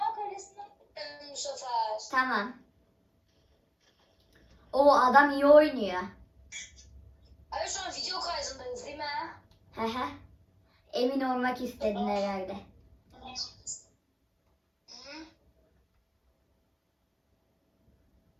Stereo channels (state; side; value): identical; both; correlation 1.00